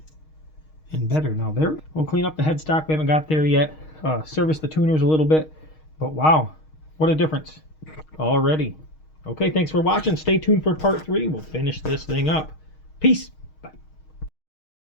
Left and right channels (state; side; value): late; right; 6.4 ms